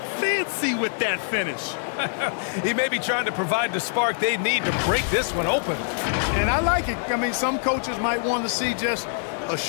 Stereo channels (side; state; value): right; silent; digital silence